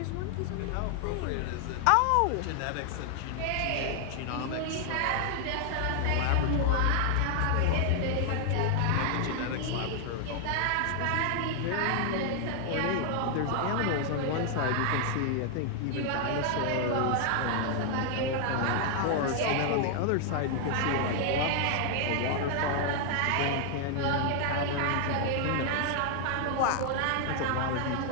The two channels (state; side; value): different; both; correlation 0.00